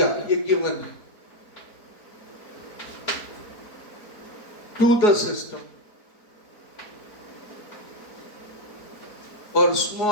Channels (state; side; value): late; right; 4.4 ms